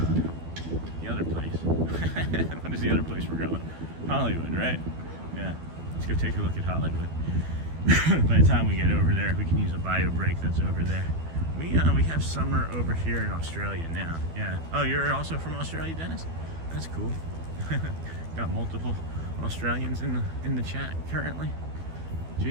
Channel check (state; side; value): late; left; 12 ms